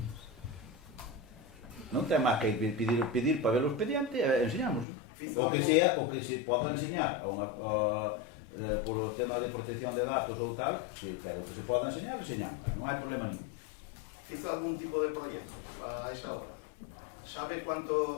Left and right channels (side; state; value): right; drops out; at 4.9 s